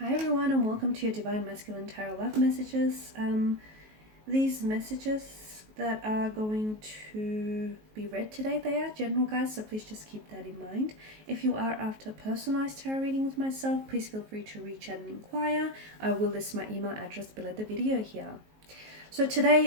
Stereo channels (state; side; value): late; left; 19 ms